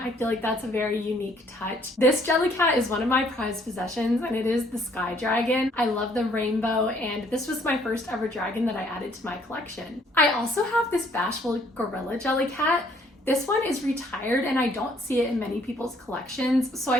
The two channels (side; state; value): both; normal; correlation 0.64